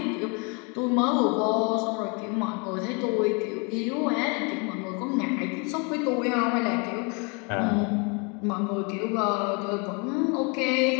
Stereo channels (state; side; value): quieter; right; 33.2 dB